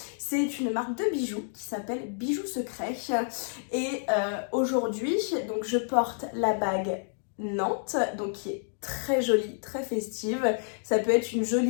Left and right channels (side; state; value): right; silent; 58 dB below the other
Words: C'est une marque de bijoux qui s'appelle Bijoux Secret et aujourd'hui donc je porte la bague Nantes, donc qui est très jolie, très festive. Ça peut être une